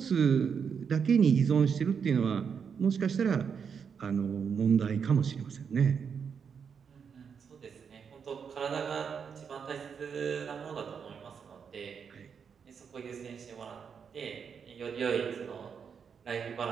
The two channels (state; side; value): quieter; left; 6.7 dB